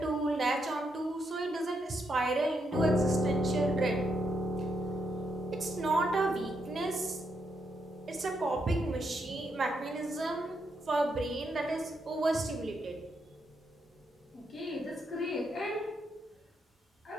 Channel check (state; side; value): normal; both; correlation 0.80